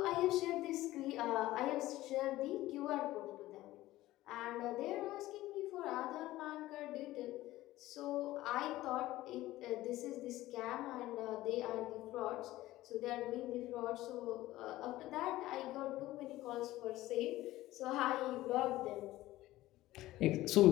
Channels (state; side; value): quieter; right; 16.4 dB